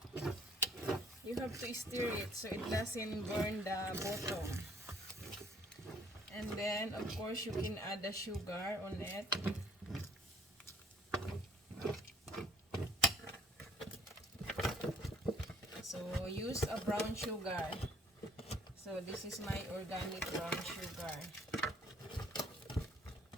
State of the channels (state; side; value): normal; both; correlation 0.59